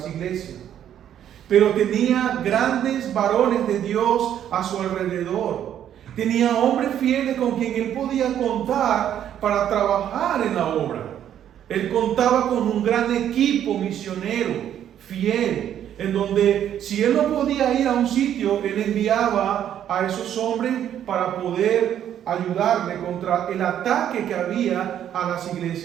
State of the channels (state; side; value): quieter; left; 10.3 dB